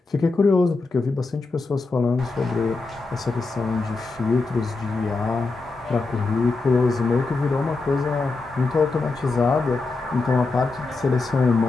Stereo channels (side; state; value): right; quieter; 3.7 dB